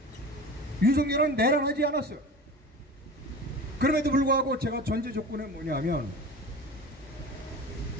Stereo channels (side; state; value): both; normal; correlation 0.35